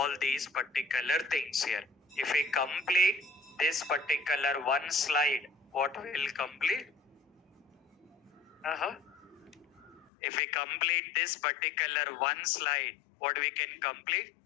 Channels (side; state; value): right; drops out; at 10.1 s